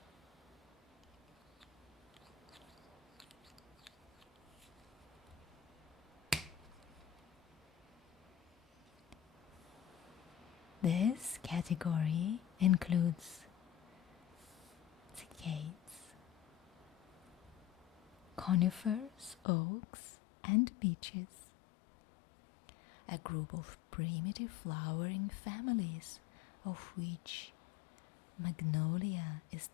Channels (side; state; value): right; drops out; at 19.4 s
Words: This category includes cycads, conifers, oaks, and beeches, a group of primitive flowering families of which Magnolia is